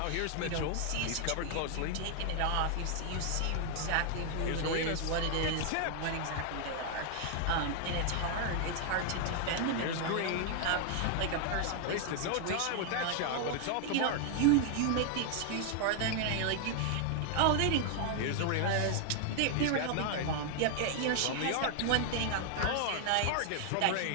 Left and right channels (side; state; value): both; different; correlation 0.00